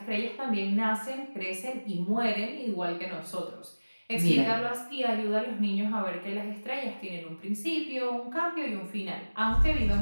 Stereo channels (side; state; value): both; inverted; correlation -1.00